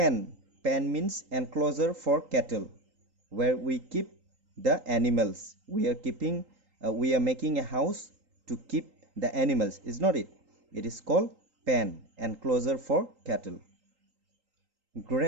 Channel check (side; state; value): left; late; 3.8 ms